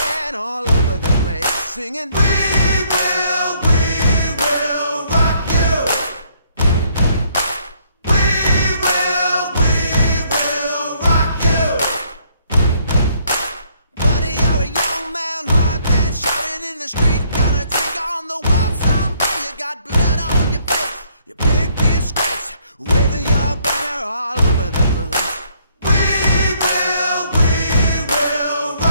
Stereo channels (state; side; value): inverted; both; correlation -0.67